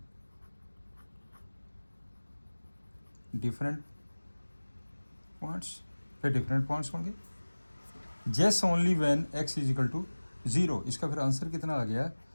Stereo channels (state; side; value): inverted; both; correlation -1.00